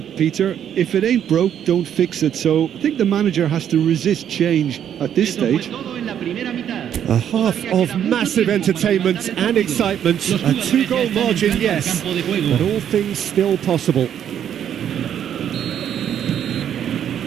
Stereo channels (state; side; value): quieter; left; 9.5 dB